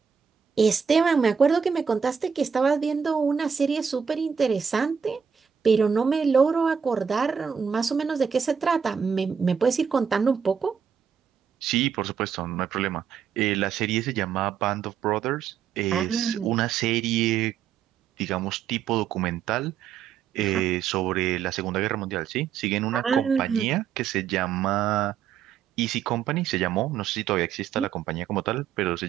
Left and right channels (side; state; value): left; quieter; 7.1 dB